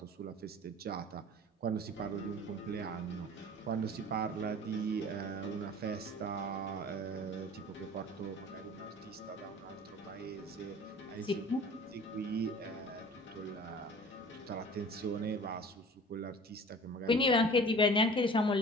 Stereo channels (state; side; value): normal; both; correlation 0.43